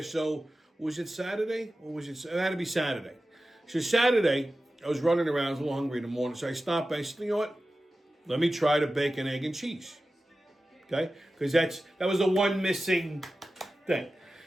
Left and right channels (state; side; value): normal; both; correlation 0.94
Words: So, was it Saturday? Or was it had to be Saturday. So Saturday, I was running around, I was a little hungry in the morning. So I stopped by, I said, you know what? Let me try the bacon, egg, and cheese. Okay? Because that was the one missing thing.